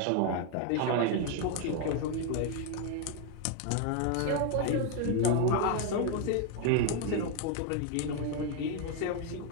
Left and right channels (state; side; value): different; both; correlation 0.01